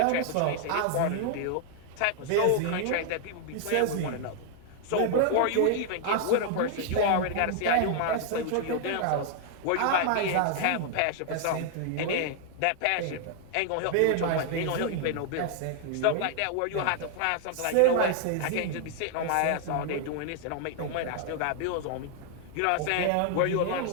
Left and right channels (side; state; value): both; different; correlation 0.00